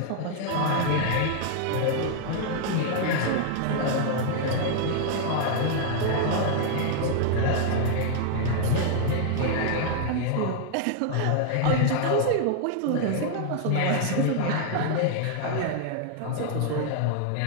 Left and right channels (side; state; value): both; different; correlation 0.00